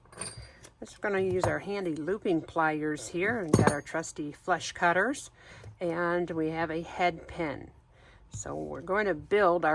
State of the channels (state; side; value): identical; both; correlation 1.00